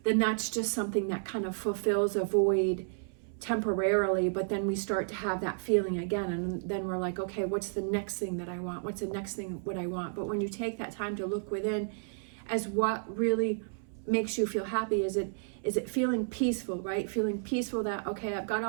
Then that's just something that kind of fulfills a void temporarily, but then we start to have that feeling again, and then we're like, okay, what's the next thing that I want? What's the next thing what I want? But when you take that time to look within as what really makes you feel happy, is it feeling peaceful, right? Feeling peaceful that, okay, I've got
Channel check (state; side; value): silent; left; 57 dB below the other